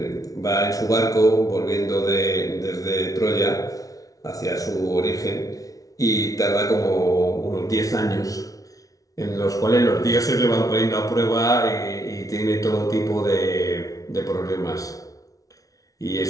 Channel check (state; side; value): late; right; 0.18 ms